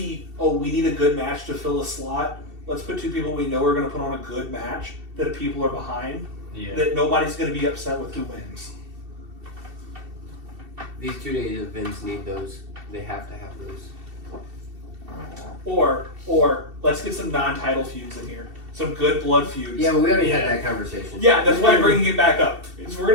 Oh, we need a good match to fill a slot. Let's put two people we know are going to put on a good match that people are behind. Yeah. That nobody's going to be upset with who wins. These 2 days events need those. They have to have those. Or let's get some non-title feuds in here. Some good blood feuds. Yeah, but we already had Yeah. that conversation. Yeah, that's why I'm bringing it back up. Is we're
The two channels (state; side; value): late; left; 2.7 ms